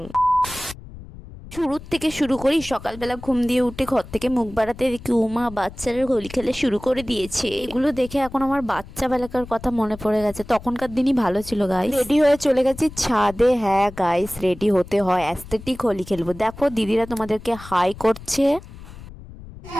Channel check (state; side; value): noise; left; rumble, 16 dB below the sound